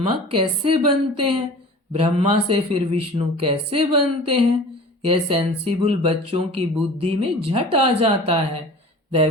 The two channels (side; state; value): both; normal; correlation 0.41